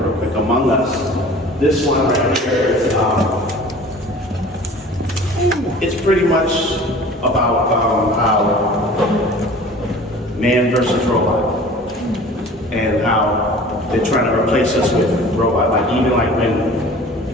quick. Among Us, this one right here is, it's pretty much about how man versus robot, and how they're trying to replace us with robot. Like even like when,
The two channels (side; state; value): both; normal; correlation 0.44